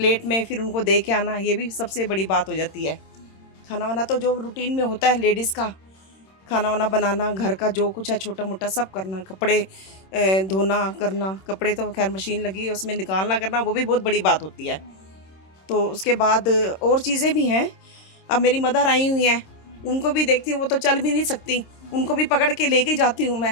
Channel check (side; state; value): right; late; 26 ms